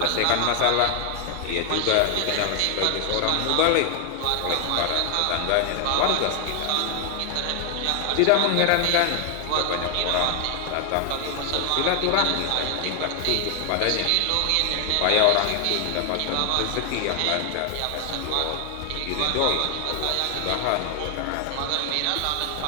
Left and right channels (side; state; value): both; different; correlation 0.00